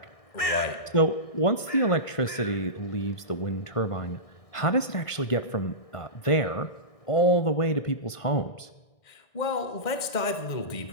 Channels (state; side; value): late; right; 1.5 ms